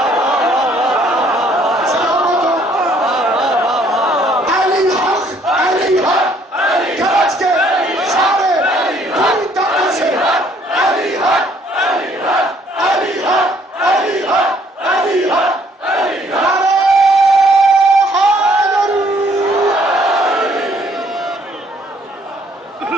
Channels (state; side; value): normal; both; correlation 0.63